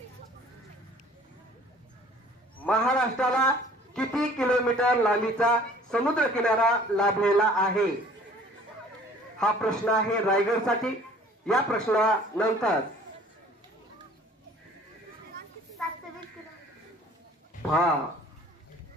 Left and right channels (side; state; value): both; normal; correlation 0.51